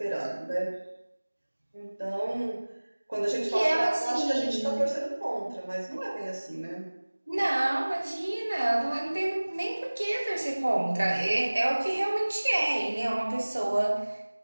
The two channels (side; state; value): both; inverted; correlation -1.00